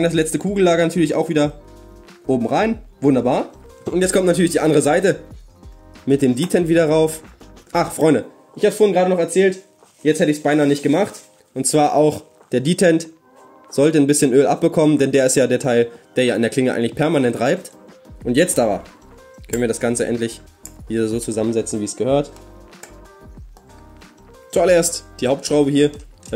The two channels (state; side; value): identical; both; correlation 1.00